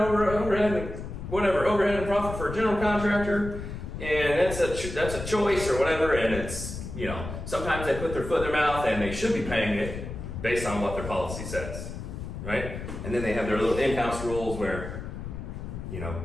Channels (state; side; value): noise; left; rumble, 8 dB below the sound